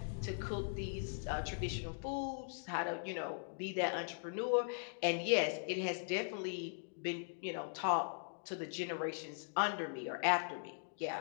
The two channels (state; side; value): silent; right; digital silence